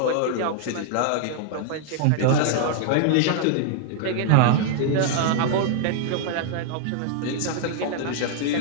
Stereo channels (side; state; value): both; different; correlation -0.01